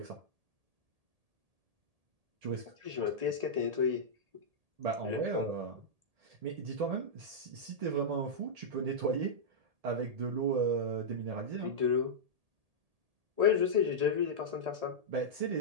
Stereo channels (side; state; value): left; late; 1.8 ms